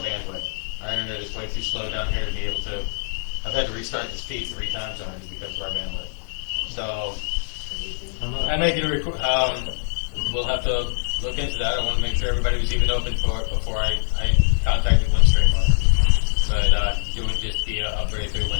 bandwidth. Our internet is way too slow down here to be able to, I've had to restart this feed 3 times already because of our bandwidth. So, I make it a we'll have to look into that. I want to make sure everybody was even open for it before I contacted Windstream on it. But, it would just be a upgrade through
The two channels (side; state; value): right; silent; 61 dB below the other